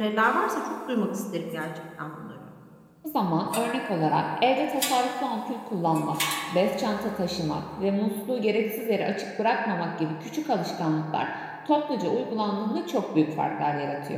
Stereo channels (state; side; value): identical; both; correlation 1.00